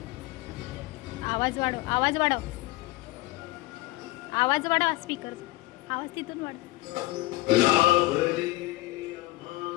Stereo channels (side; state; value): right; quieter; 20.3 dB